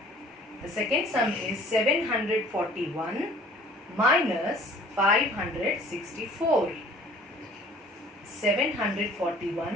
The second sum is 741 minus 564.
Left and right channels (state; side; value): normal; both; correlation 0.52